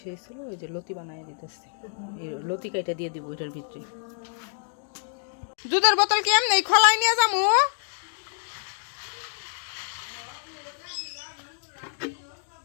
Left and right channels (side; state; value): right; silent; 60 dB below the other